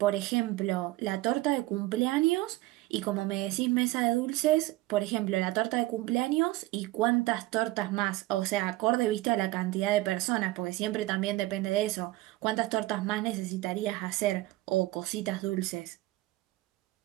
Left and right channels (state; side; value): quieter; left; 18.5 dB